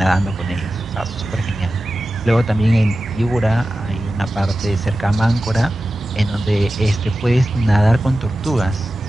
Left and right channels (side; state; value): both; normal; correlation 0.94